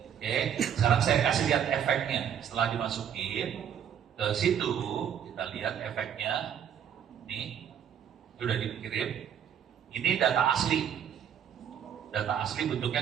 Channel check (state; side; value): quieter; left; 8.9 dB